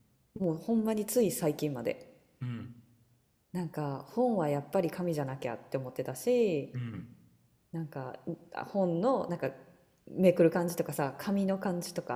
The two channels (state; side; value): identical; both; correlation 1.00